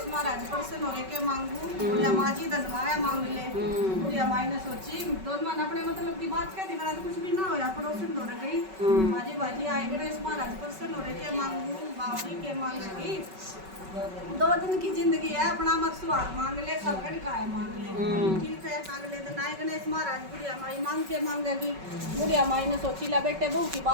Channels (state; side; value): late; left; 5.3 ms